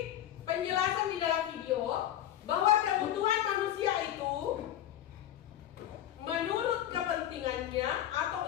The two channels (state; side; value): quieter; right; 11.6 dB